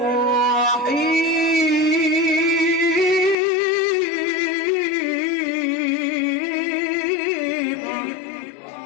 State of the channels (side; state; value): right; drops out; at 3.4 s